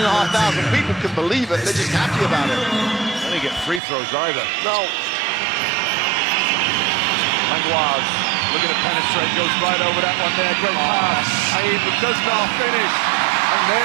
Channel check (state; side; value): drops out; left; at 3.8 s